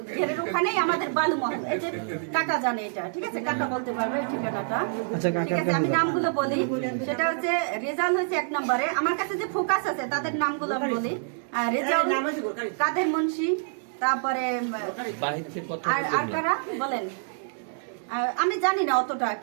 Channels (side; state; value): left; silent; digital silence